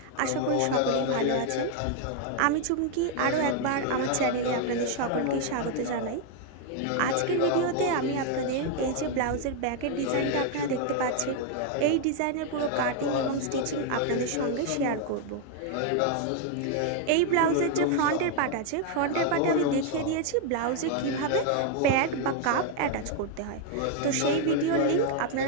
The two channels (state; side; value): different; both; correlation 0.00